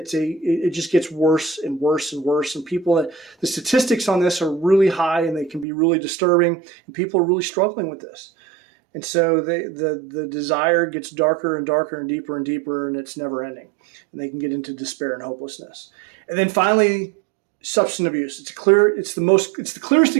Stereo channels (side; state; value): left; drops out; at 5.7 s